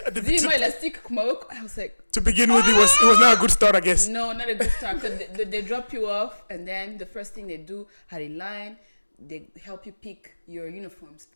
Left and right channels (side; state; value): both; inverted; correlation -1.00